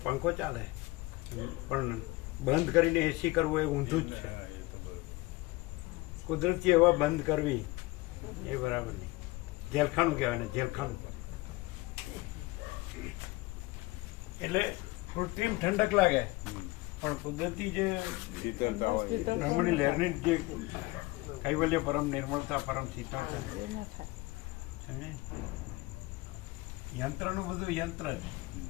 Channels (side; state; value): right; quieter; 21.8 dB